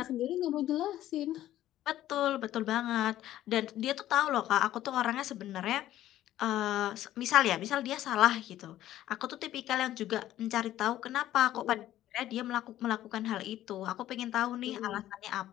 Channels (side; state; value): right; quieter; 13.4 dB